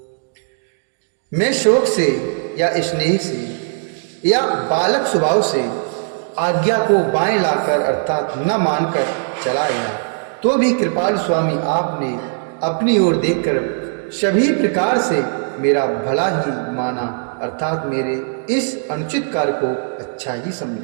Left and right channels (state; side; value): silent; left; digital silence